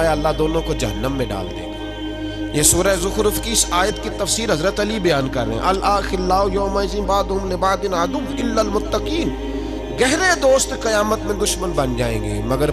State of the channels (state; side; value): identical; both; correlation 1.00